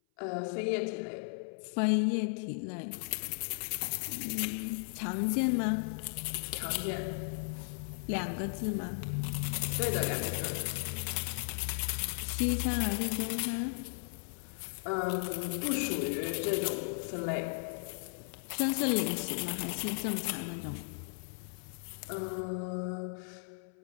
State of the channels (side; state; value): right; silent; 54 dB below the other